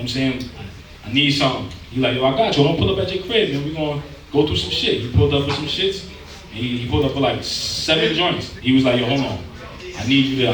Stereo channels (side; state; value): both; identical; correlation 1.00